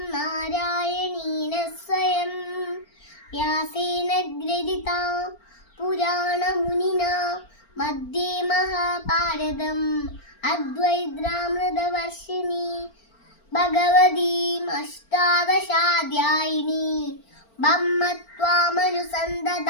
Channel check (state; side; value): late; right; 4.4 ms